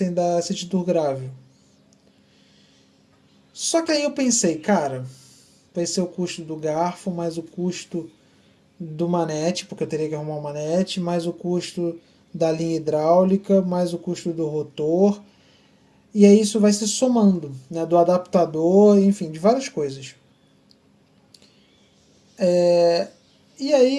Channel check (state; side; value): identical; both; correlation 1.00